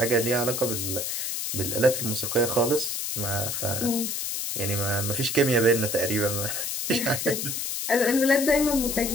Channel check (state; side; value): noise; left; hiss, 2 dB below the sound